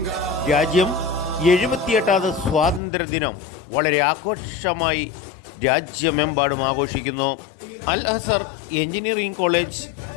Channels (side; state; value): right; drops out; at 2.8 s